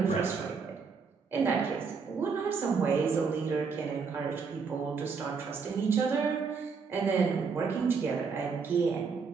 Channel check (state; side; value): quieter; left; 5.4 dB